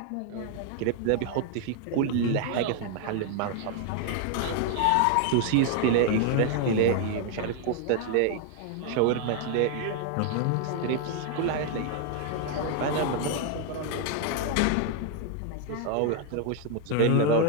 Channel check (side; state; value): both; different; correlation 0.00